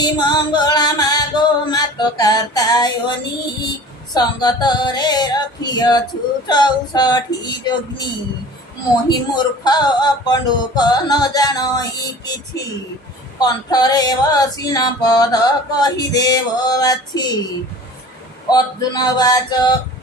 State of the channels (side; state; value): both; normal; correlation 0.42